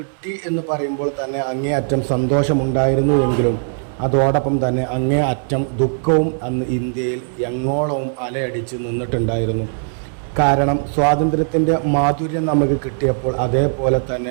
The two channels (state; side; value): silent; left; digital silence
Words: എന്ന് പറയുമ്പോൾ തന്നെ അങ്ങേയറ്റം സന്തോഷമുണ്ടായിരുന്നു എങ്കിലും അതോടൊപ്പം തന്നെ അങ്ങേയറ്റം ദുഃഖവും അന്ന് ഇന്ത്യയിൽ എങ്ങോളവും അലയടിച്ച് നിന്നിട്ടുണ്ടായിരുന്നു. കാരണം സ്വാതന്ത്ര്യത്തിൻ്റെ മാധുര്യം നമുക്ക് കിട്ടിയപ്പോൾ അതേപോലെ